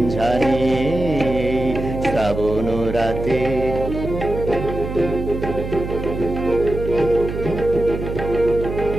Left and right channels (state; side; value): noise; right; hum, 6 dB below the sound